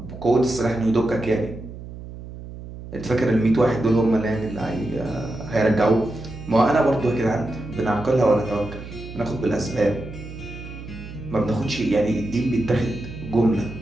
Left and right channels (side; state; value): right; noise; hum, 13 dB below the sound